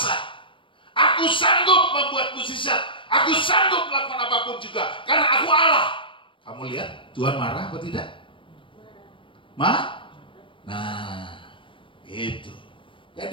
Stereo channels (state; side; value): late; right; 0.25 ms